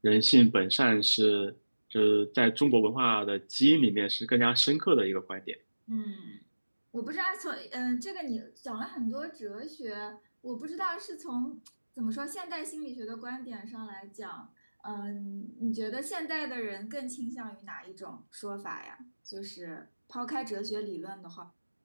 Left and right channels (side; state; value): both; inverted; correlation -1.00